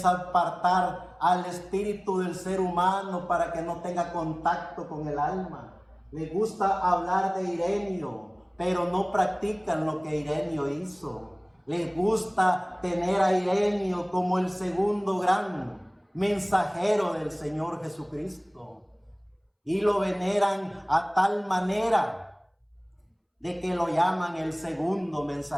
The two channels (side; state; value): both; identical; correlation 1.00